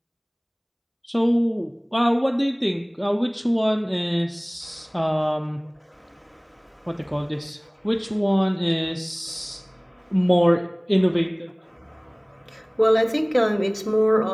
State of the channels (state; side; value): identical; both; correlation 1.00